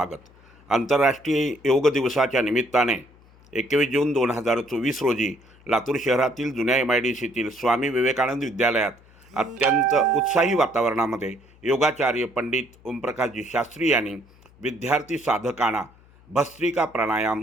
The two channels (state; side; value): noise; left; hum, 27 dB below the sound